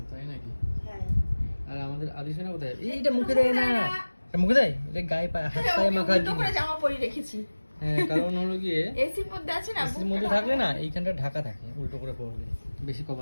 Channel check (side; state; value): both; inverted; correlation -1.00